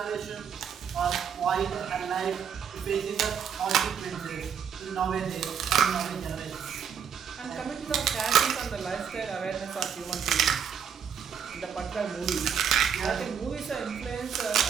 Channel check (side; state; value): left; quieter; 7.6 dB